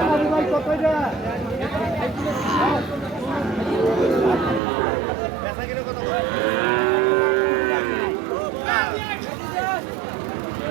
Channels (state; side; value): drops out; left; at 4.6 s